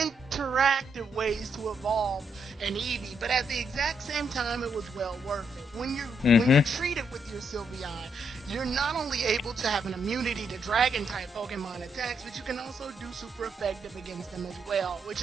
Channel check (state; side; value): normal; both; correlation 0.77